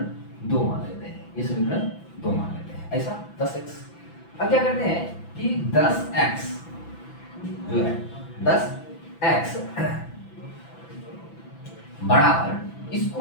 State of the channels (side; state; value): right; late; 6.0 ms